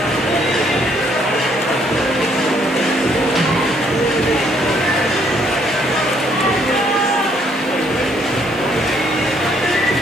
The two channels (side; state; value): both; normal; correlation 0.67